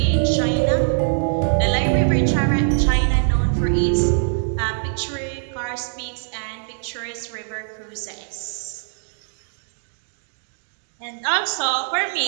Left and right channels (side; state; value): left; silent; digital silence